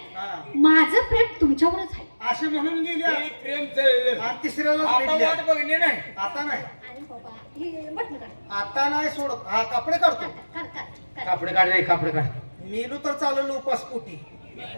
हा. माझं प्रेम तुमच्यावरच आहे. असे म्हणून गेल्या हे प्रेम चाललं. आणि तिसऱ्याला आता भेटल्या. वाट बघणे नाही. आता नाही, अरे बाबा, हे बटणं काढ. आता नाही सोडत. हा कपडे काढतो. काढ, काढ, काढ. कापडे काढ रे, कापडे काढ. मेलू तर चालवलं उपास पोटी,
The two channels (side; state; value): both; inverted; correlation -1.00